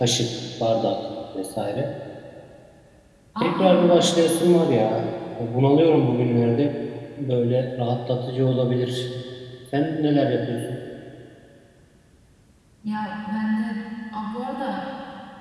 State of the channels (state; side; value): identical; both; correlation 1.00